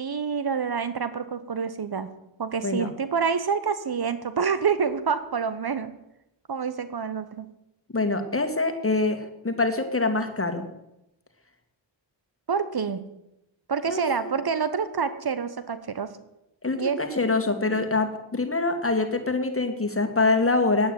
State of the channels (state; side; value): normal; both; correlation -0.16